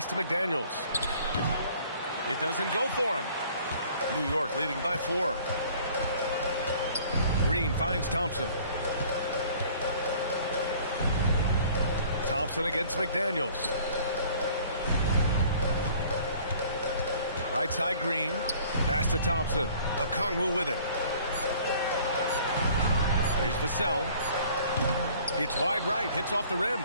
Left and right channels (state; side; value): inverted; both; correlation -0.53